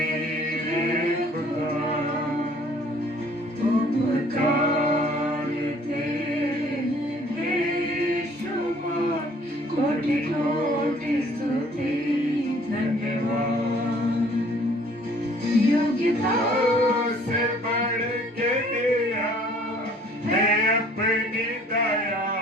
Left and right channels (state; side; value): normal; both; correlation 0.57